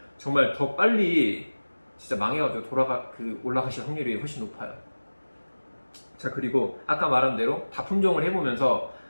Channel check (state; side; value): inverted; both; correlation -1.00